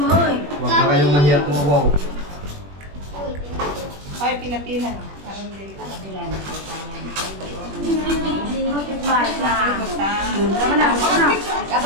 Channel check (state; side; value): late; left; 21 ms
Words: Huwag na kayong mahirap mo. Wow. Ay, pila-pila. Parang dili.